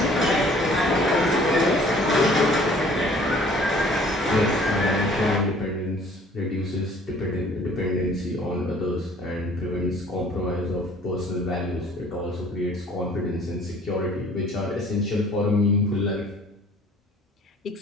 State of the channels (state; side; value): normal; both; correlation 0.54